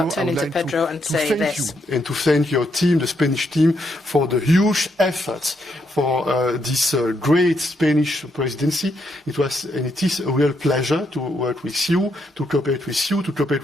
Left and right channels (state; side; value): normal; both; correlation 0.77